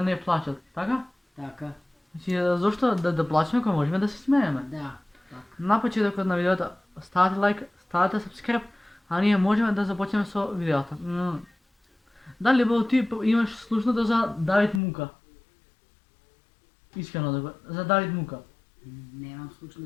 не плачат, така? Така, Значи, зошто да плачеме кога можеме да се смееме? да, така. На почетокот на видеото ставате лайк, ставате subscribe, а ние можеме да започнеме со видеото. Дали бо ти имаш слушнато за Давид Мука? Искрено да го, за Давид Мука. Немам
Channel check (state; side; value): drops out; right; at 14.8 s